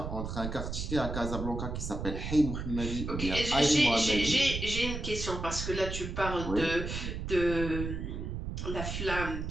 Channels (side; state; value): right; noise; rumble, 5 dB below the sound